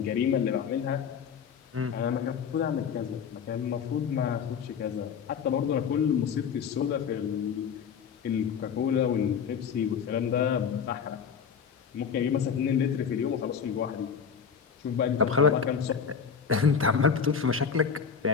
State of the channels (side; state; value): right; quieter; 6.8 dB